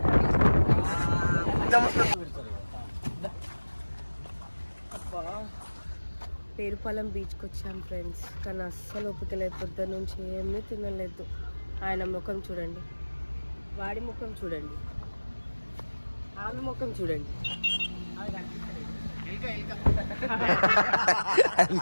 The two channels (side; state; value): both; inverted; correlation -1.00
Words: పేరుపాలెం బీచ్కి వచ్చాం ఫ్రెండ్స్. కానీ అస్సలు ఓపిక లేదు, పొద్దున్న నుంచి ఏమీ తినలేదు. ఆయన ముఖం చూడండి, వాడి ముఖం చూడండి, ఆమె ముఖం చూడండి.